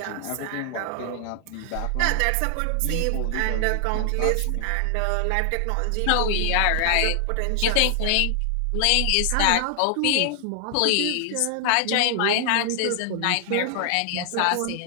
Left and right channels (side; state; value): both; different; correlation 0.00